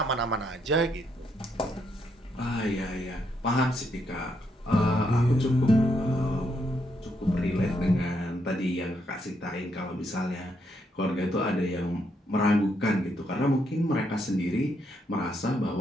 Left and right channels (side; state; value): both; normal; correlation 0.76